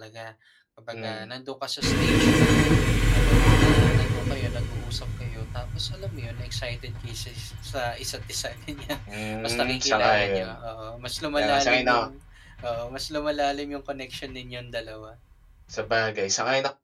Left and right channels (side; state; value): both; identical; correlation 1.00